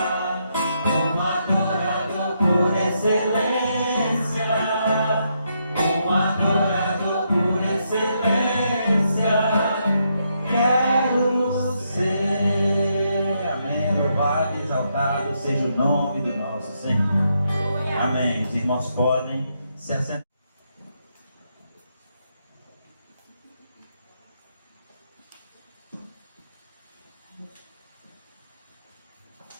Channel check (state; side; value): inverted; both; correlation -0.79